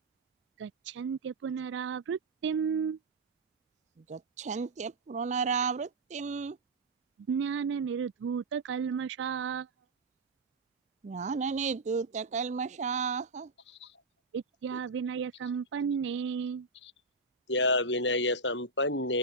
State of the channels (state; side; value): quieter; left; 3.2 dB